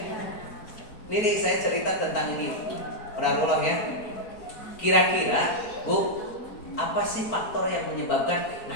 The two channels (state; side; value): late; right; 4.4 ms